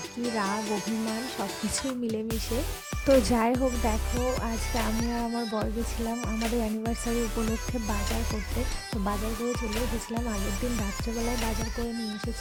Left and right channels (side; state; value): both; identical; correlation 1.00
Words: রাগ, অভিমান সব কিছুই মিলেমিশে। তো যাই হোক, দেখো আজকে আমি আর আমার বর গেছিলাম আমাদের অ্যানিভার্সারি উপলক্ষে বাজার করতে। তো বাজার করে চলে এসেছিলাম, আগের দিন রাত্রেবেলায় বাজার করে নিয়ে